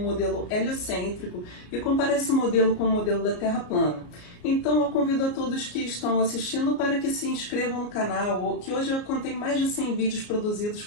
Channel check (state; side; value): late; right; 34 ms